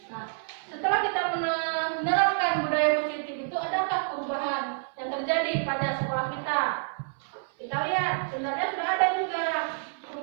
Nah, setelah kita menerapkan budaya positif itu, adakah perubahan yang terjadi pada sekolah kita? Kita lihat, sebenarnya sudah ada juga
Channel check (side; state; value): left; silent; 59 dB below the other